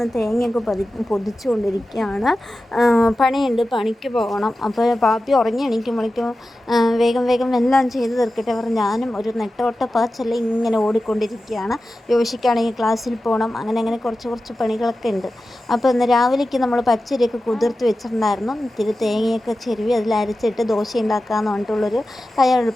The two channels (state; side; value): normal; both; correlation 0.94